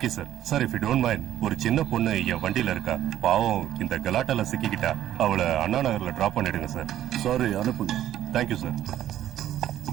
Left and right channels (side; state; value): left; quieter; 12.2 dB